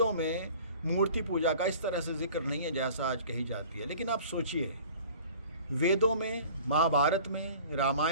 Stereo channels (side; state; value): both; inverted; correlation -0.46